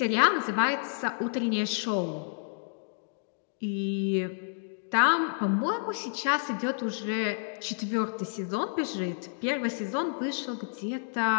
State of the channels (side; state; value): right; silent; digital silence